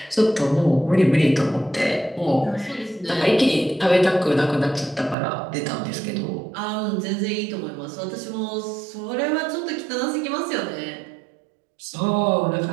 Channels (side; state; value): left; drops out; at 5.2 s